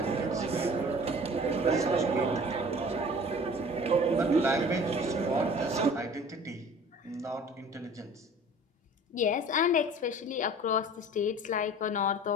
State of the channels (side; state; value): both; normal; correlation 0.45